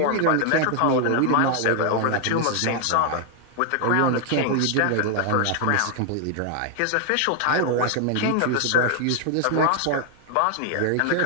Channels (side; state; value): both; different; correlation 0.00